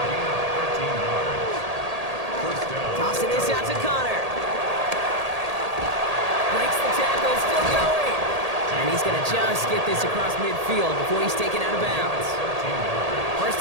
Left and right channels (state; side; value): late; left; 1.8 ms